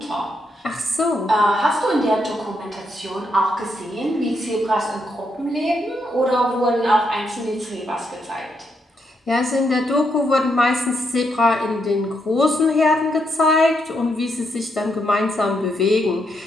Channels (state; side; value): normal; both; correlation 0.79